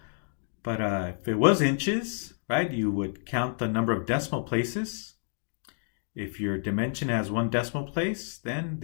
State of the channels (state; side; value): silent; right; digital silence